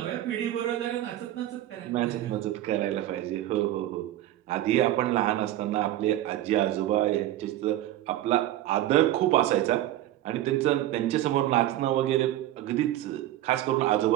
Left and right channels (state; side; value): quieter; left; 13.9 dB